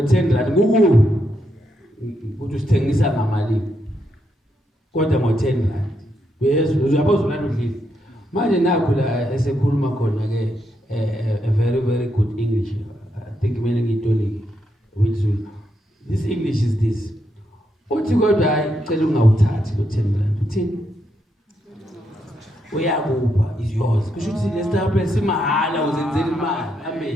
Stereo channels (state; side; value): normal; both; correlation 0.80